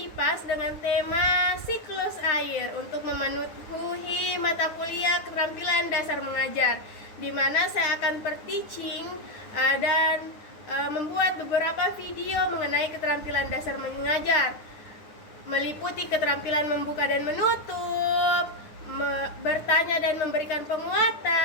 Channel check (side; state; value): right; late; 9.0 ms